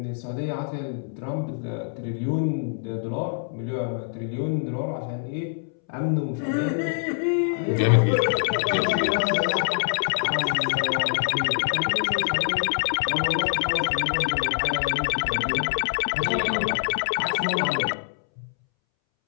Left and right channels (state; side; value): silent; right; 62 dB below the other